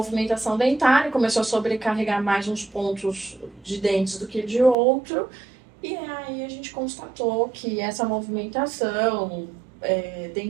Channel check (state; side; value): drops out; left; at 4.8 s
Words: dentária, começou a sobrecarregar mais uns pontos de dentes do que de outro. E aí a gente constatou que essa movimentação